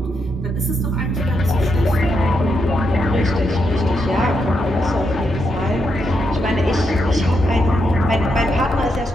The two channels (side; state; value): both; normal; correlation 0.81